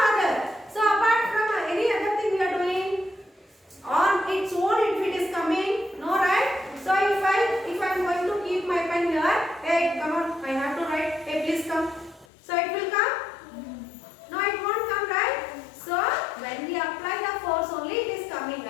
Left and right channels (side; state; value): right; drops out; at 12.2 s